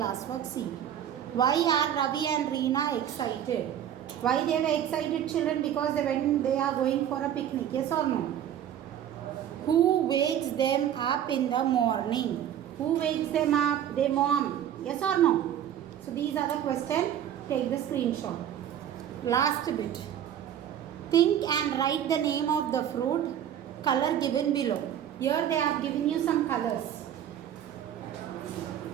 See. Why are Ravi and Reena excited? Why they were excited, children? Because when they are going for a picnic. Yes or no? Who wakes them up in the morning? Who wakes them up? Their mom. Yes or no? So these are the questions. Take the screenshot. Last bit. Think and write the name of the fruit. Color given below. Here they have given you some colors.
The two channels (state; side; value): quieter; left; 10.2 dB